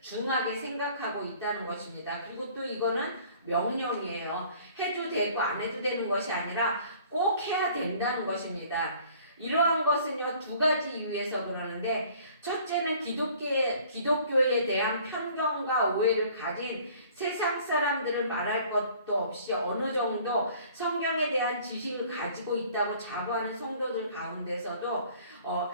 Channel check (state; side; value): inverted; both; correlation -0.52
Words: 중하게 생각하고 있다는 것입니다. 그리고 또 이거는 명령이에요. 해도 되고 안 해도 되는 것이 아니라 꼭 해야 된다는 것입니다. 이러한 것은요 두 가지 이유에서 그러는데 첫째는 기독교에 대한 편견과 오해를 가진 세상 사람들을 말할 것도 없이 어느 정도 성경에 대한 지식을 가지고 있다고 자부하는 성도들 가운데서도